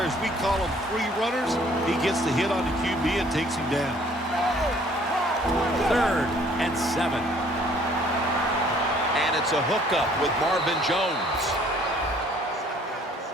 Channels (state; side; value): normal; both; correlation 0.58